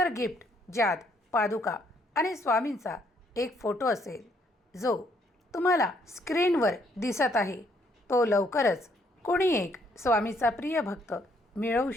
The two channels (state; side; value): normal; both; correlation 0.69